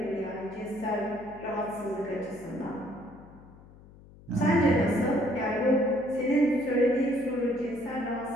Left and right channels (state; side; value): noise; left; hum, 22 dB below the sound